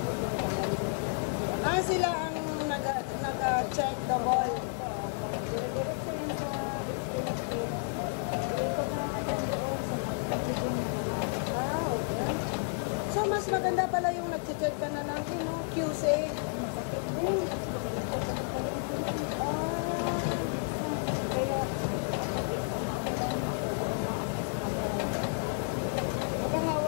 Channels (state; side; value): silent; right; 57 dB below the other